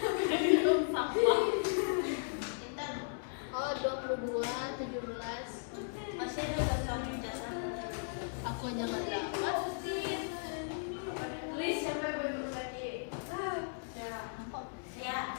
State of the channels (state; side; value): silent; right; digital silence